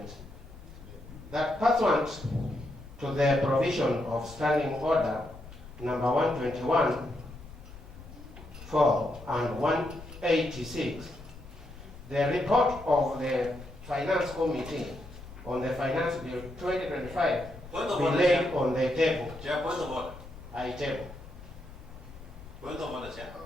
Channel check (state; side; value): noise; left; rumble, 16 dB below the sound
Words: that pursuant to the provision of Standing Order number 121, 4 and 186, the report of the Finance Committee on the Finance Bill 2025 be laid on the table. Chair, point of order. I table. Point of order, Chair.